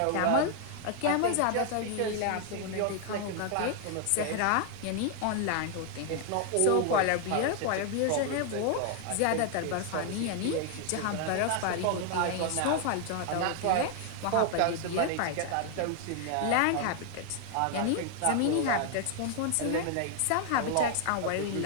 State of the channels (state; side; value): different; both; correlation 0.00